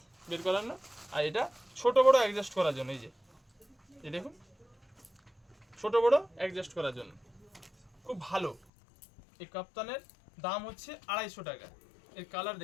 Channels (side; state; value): right; drops out; at 8.6 s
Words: বের করার না, আর এটা ছোট বড় অ্যাডজাস্ট করার জন্য। এই যে এই দেখুন ছোট বড় অ্যাডজাস্ট করার জন্য, খুব ভালো। এই কাপ্তানের দাম হচ্ছে 250 টাকা। এর কালার